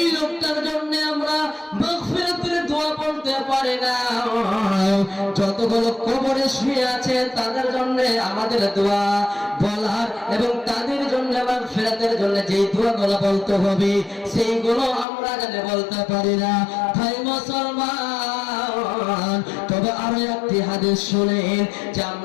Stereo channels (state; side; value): drops out; right; at 15.1 s